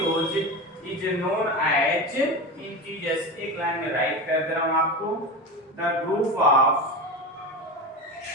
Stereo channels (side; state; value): both; normal; correlation 0.24